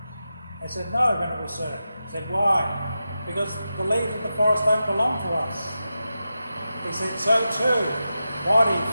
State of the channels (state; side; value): inverted; both; correlation -0.91